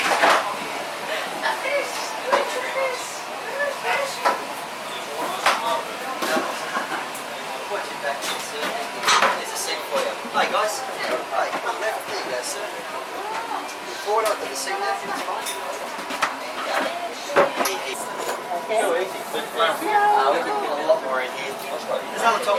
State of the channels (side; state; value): both; identical; correlation 1.00